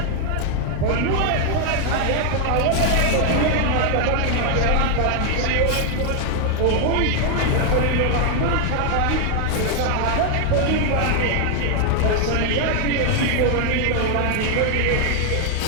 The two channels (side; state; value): both; different; correlation 0.00